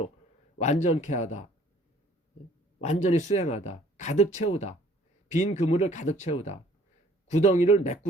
완전케 하다. 완전히 수행하다. 가득 채우다. 빈 그물을 가득 채우다. 구덩이를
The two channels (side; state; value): both; normal; correlation 0.57